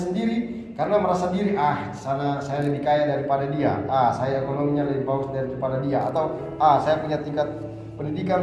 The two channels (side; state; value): both; identical; correlation 1.00